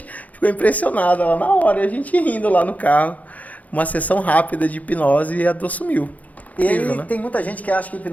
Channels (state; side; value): late; right; 0.074 ms